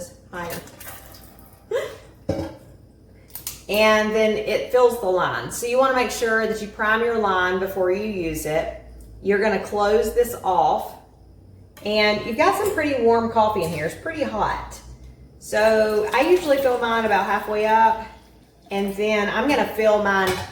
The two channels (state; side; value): identical; both; correlation 1.00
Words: higher. And then it fills the line. So you wanna make sure that you prime your line before you use it. You're gonna close this off. And you've got some pretty warm coffee in here. It's pretty hot. So I usually fill mine about halfway up. And then I'm gonna fill mine